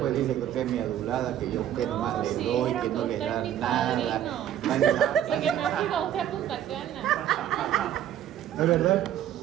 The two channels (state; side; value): quieter; left; 10.9 dB